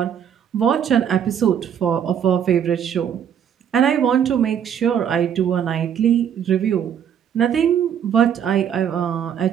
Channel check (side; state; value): left; quieter; 8.7 dB